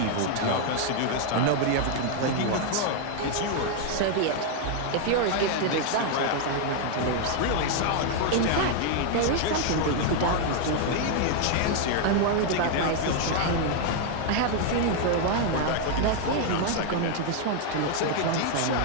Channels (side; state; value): both; different; correlation 0.00